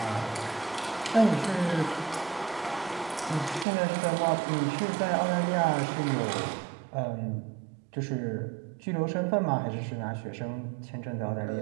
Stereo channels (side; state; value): left; drops out; at 3.7 s